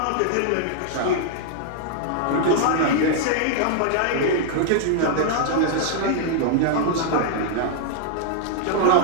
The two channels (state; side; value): different; both; correlation -0.01